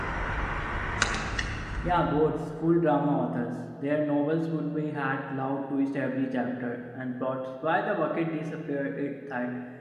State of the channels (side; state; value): both; identical; correlation 1.00